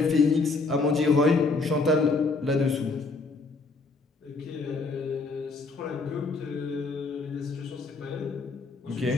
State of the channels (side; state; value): right; quieter; 3.8 dB